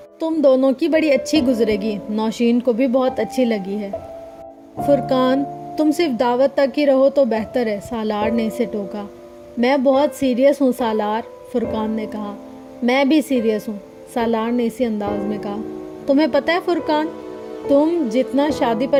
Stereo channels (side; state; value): both; identical; correlation 1.00